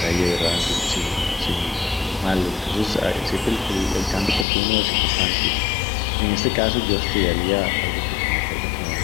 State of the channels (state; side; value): drops out; right; at 4.5 s